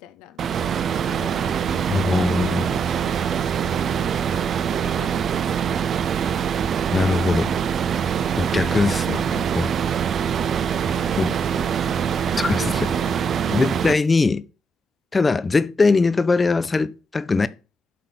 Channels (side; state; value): both; normal; correlation 0.78